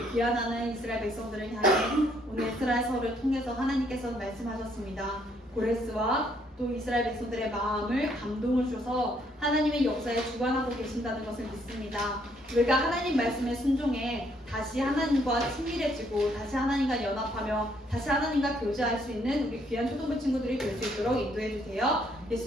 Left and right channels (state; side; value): normal; both; correlation 0.68